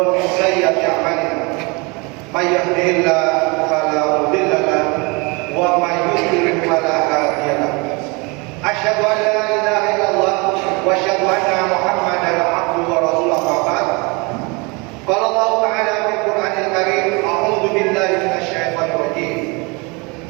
min sayyiati a'malina. May yahdihillahu fala mudilla lahu wa may yudlil fala hadiya lahu. Asyhadu an la ilaha illallah wa asyhadu anna Muhammadan abduhu wa rasuluhu. Qala Allah Ta'ala fil Qur'anil Karim, a'udzu billahi minasy syaithanir rajim.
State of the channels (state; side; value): quieter; left; 28.4 dB